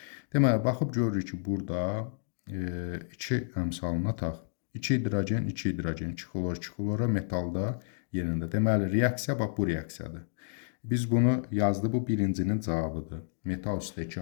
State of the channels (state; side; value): silent; right; digital silence